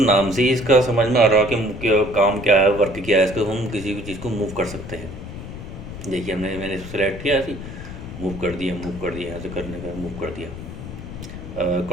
नाम से ही इसका समझ में आ रहा है कि क्या काम क्या है, वर्क क्या है। इसको हम किसी भी चीज़ को मूव कर सकते हैं। देखिए मैंने इसको सेलेक्ट किया ऐसे मूव कर दिया, यहाँ से करने का मूव कर दिया।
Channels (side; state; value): left; noise; rumble, 10 dB below the sound